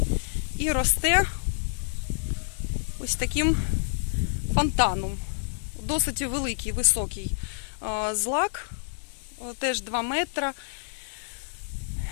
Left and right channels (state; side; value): silent; right; digital silence